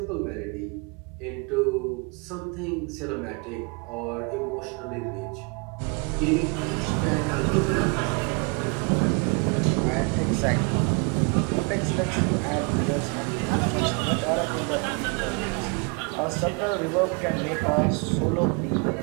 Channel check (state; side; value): quieter; left; 33.3 dB